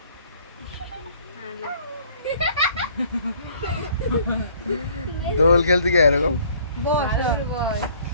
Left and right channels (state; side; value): inverted; both; correlation -0.58